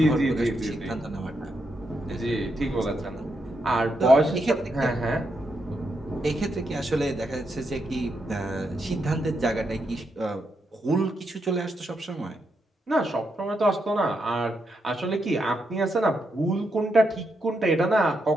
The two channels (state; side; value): normal; both; correlation 0.82